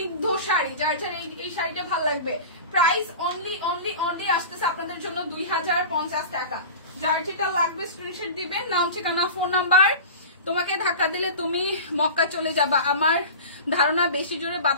শাড়ি। যার যার এই শাড়িটা ভালো লাগবে, প্রাইস অনলি অনলি অনলি আসতেছে আপনাদের জন্য 2050 টাকা। যার যেটা লাগবে স্ক্রিনশট দিবেন, নাম ঠিকানা ফোন নাম্বার। তোমাকে ধাক্কা দিলে তুমি মক্কা চলে যাবা, আমার ধারণা বেশি জোরে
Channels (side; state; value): both; inverted; correlation -0.34